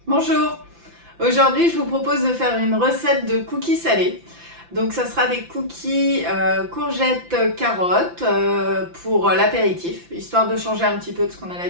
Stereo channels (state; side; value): late; left; 5.9 ms